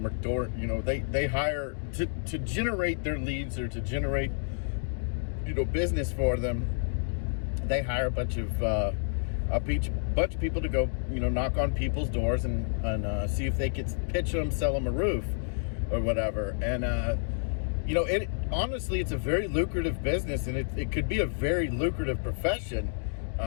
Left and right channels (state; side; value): silent; right; digital silence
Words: are they hire to generate their leads, or to generate, business for them. They hire a bunch of people to go, knock on people's doors and see if they could pitch them, sell them a roof or whatever. And, honestly, it's a very lucrative business, and it could be a very lucrative profession,